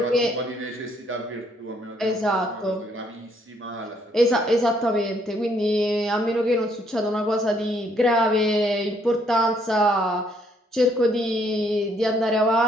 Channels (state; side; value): normal; both; correlation 0.68